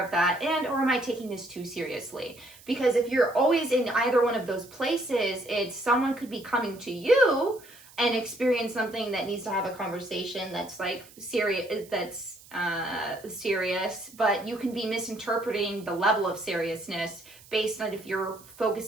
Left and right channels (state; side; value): noise; right; hiss, 22 dB below the sound